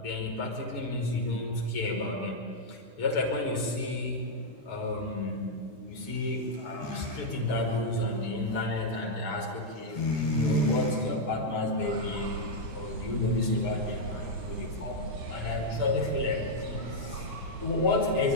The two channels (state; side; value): late; right; 5.7 ms